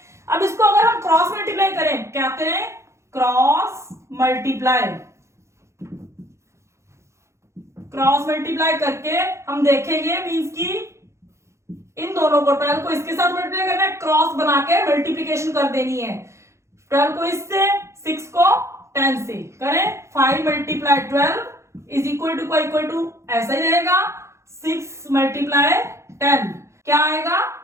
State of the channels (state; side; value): late; left; 0.14 ms